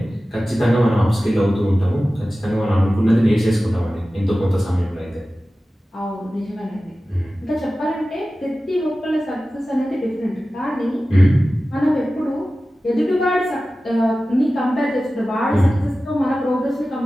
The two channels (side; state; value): both; normal; correlation 0.95